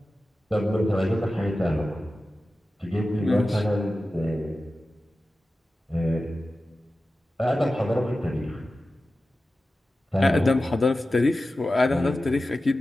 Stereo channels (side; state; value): both; normal; correlation 0.94